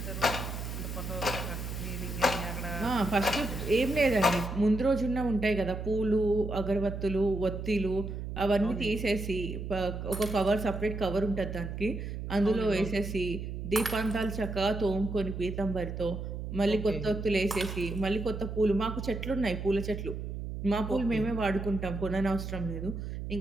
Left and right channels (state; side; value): noise; right; hum, 6 dB below the sound